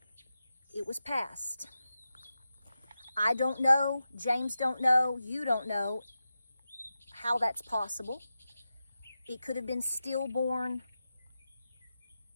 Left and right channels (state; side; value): inverted; both; correlation -0.92